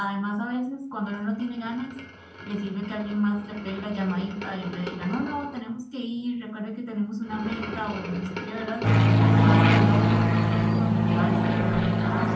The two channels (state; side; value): identical; both; correlation 1.00